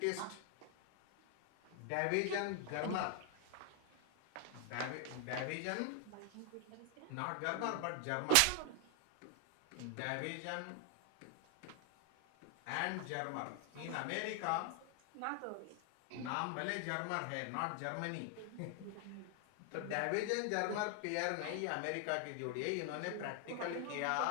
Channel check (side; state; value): both; different; correlation 0.00